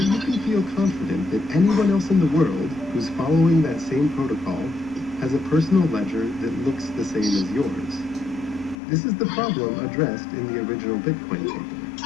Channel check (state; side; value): drops out; right; at 8.8 s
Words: you can feel confident that anyone else in the world who's following that same protocol has a personal ledger that looks the same as yours? This is the problem addressed in the original Bitcoin